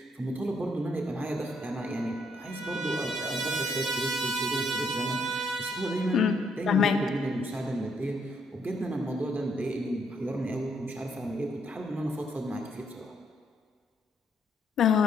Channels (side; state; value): both; normal; correlation 0.72